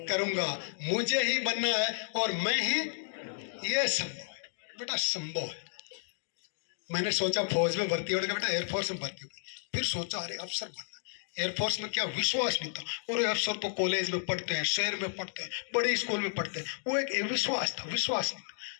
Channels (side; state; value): right; silent; digital silence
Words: करूंगा, मुझे ही बनना है और मैं ही, यह संभव है बेटा, संभव है। मैंने सोचा फौज में भर्ती होने का बेटा, एयरफोर्स में भर्ती हुई, फिर सोचा अरे अफसर बनना। एयरफोर्स में क्या विश्वास नहीं था, और अफसर तो कॉलेज में पढ़ते हैं, शहर में पढ़ते हैं, बड़े स्कूल में पढ़ते हैं, वो एक विश्वास था, विश्वास नहीं,